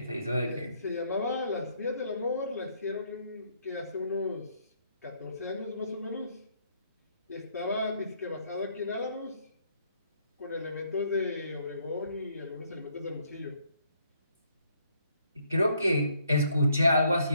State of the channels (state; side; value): inverted; both; correlation -0.69